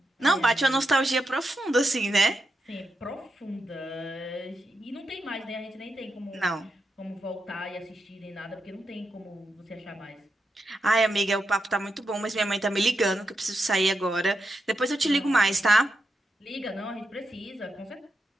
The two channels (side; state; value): both; normal; correlation 0.86